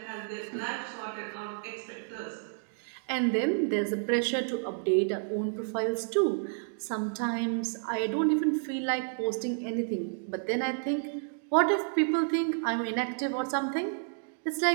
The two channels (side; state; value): left; silent; digital silence